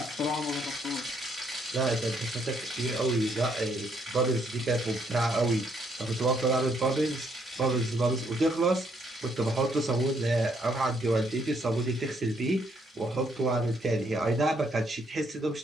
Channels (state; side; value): normal; both; correlation 0.71